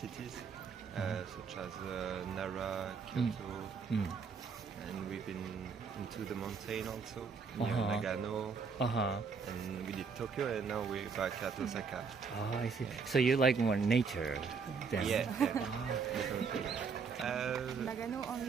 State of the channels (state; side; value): quieter; left; 5.5 dB